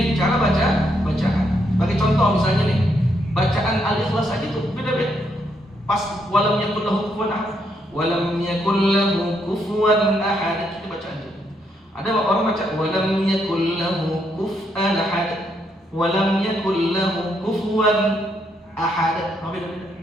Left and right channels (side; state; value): both; normal; correlation 0.76